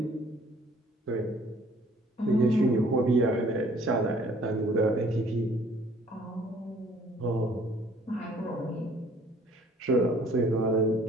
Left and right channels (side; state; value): both; normal; correlation 0.57